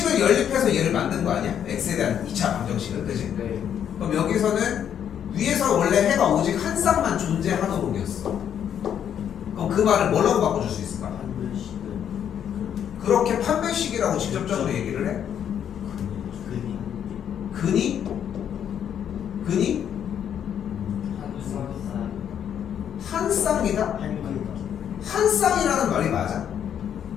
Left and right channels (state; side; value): quieter; right; 9.1 dB